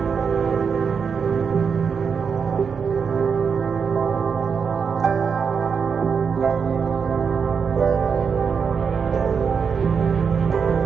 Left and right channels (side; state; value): left; quieter; 6.1 dB